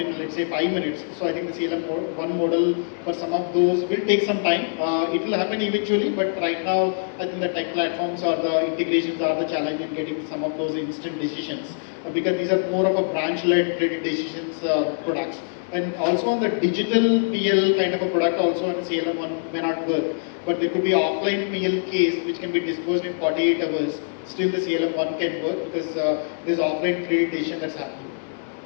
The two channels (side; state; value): right; silent; digital silence